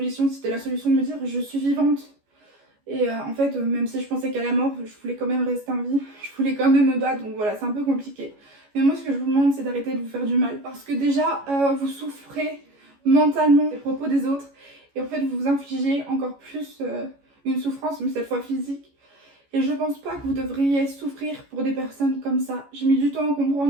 C'était la solution de me dire, je suis vivante. Et en fait, même si je pensais qu'à la mort, je voulais quand même rester en vie. Je voulais quand même me battre, donc voilà, c'est un peu compliqué. Mais moi, ce que je vous demande, c'est d'arrêter de vous faire du mal. Parce que déjà, vous souffrez mentalement des propos des autres. Et en fait, vous vous infligez encore plus une souffrance, mais cette fois physique. Et je pense pas que vous devriez souffrir pour des personnes comme ça. J'ai mis du temps à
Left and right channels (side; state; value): left; late; 14 ms